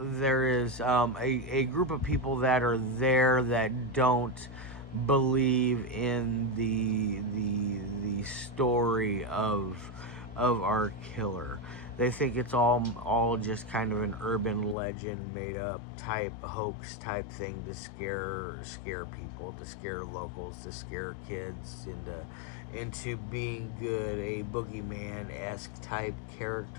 is a group of people that are there that don't believe in the story of our killer. They think it's all just kind of an urban legend, made up type hoax type thing to scare people, to scare locals, to scare kids into being good, a boogeyman-esque type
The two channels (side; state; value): right; drops out; at 14.8 s